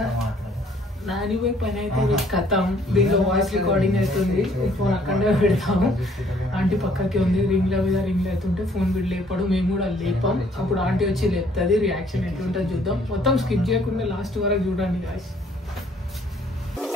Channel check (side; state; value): both; normal; correlation 0.62